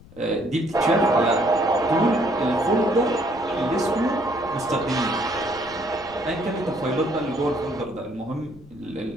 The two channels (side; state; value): left; noise; rumble, 22 dB below the sound